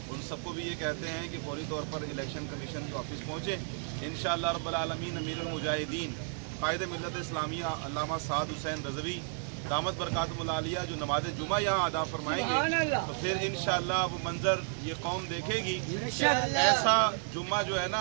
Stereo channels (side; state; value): left; silent; 56 dB below the other